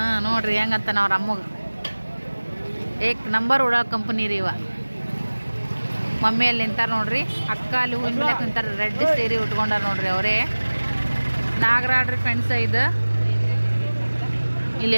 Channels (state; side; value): inverted; both; correlation -1.00